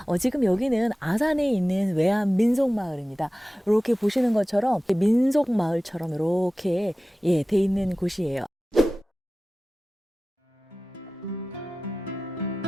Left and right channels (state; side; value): normal; both; correlation 0.96